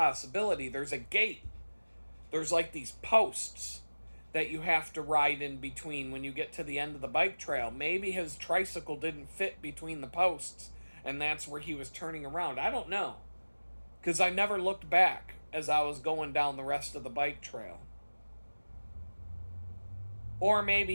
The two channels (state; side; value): inverted; both; correlation -1.00